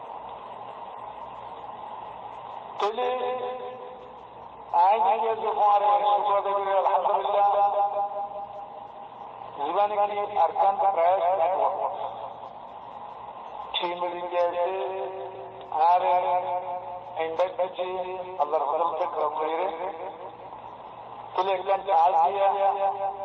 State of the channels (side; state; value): both; identical; correlation 1.00